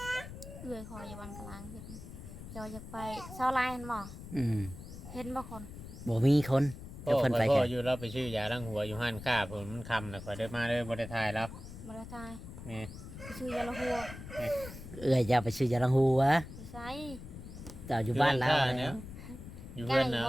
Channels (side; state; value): left; noise; rumble, 12 dB below the sound